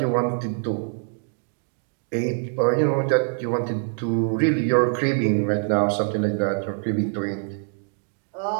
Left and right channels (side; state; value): left; silent; 62 dB below the other